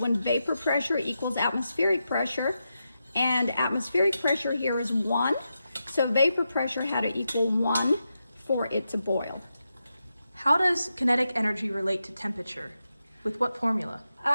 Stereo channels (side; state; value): both; inverted; correlation -0.87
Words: vapor pressure equals atmospheric pressure, and atmospheric pressure here is 1. So vapor pressure had to equal 1 for it to boil. How does kinetic energy relate to temperature? With what formula?